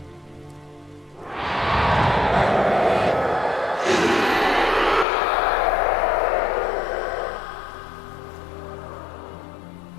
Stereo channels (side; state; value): right; drops out; at 5.1 s